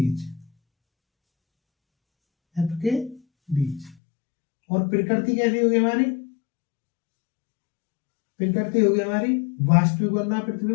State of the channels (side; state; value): right; drops out; at 4.0 s